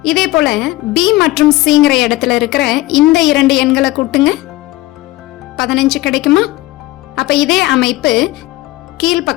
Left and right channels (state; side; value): quieter; right; 18.7 dB